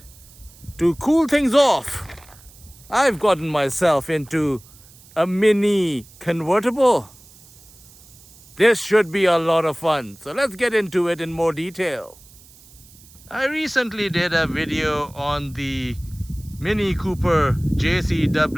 to cool things off, I've gotten myself into a mini convertible. This should be a lot of fun, so let's get into it in more detail. I recently did a video on the Mini Cooper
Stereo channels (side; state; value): right; noise; hiss, 24 dB below the sound